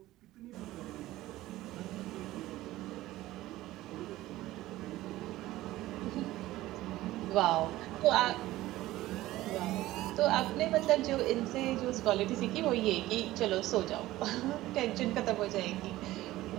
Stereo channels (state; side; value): quieter; left; 16.4 dB